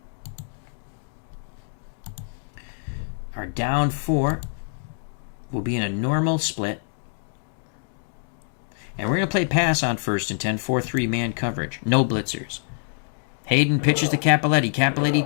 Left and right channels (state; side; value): silent; right; digital silence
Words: Our down 4 will be in a normal split. And we're going to play pass on 1st and 10, 4-3 man coverage. No blitzers. Hayden pitches to Cappelletti. Cappelletti